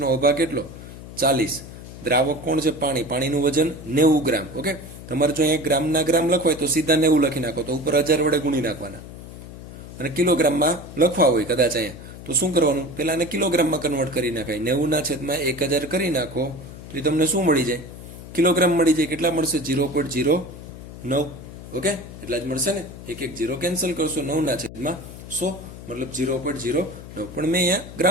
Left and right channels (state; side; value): noise; left; hum, 14 dB below the sound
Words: ઓભા કેટલો? 40. દ્રાવક કોણ છે? પાણી. પાણીનું વજન 90 ગ્રામ. ઓકે, તમારે જો અહીંયા ગ્રામના ગ્રામ લખવાય તો સીધા 90 લખી નાખો, તો ઉપર 1000 વડે ગુણી નાખવાના. અને કિલોગ્રામમાં લખવા હોય કદાચ અહીંયા, તો શું કરવાનું? પહેલા એને કિલોગ્રામમાં કન્વર્ટ કરી નાખાય. 90 ના છેદમાં 1000 કરી નાખો તો એ તમને શું મળી જાય? કિલોગ્રામ મળી જાય. કેટલા મળશે? 0.09. ઓકે, એટલા જ મળશે ને. એક 0 કેન્સલ કરશો. 9 ના છેદમાં 100 મતલબ 0.09. પણ મેં અહીંયા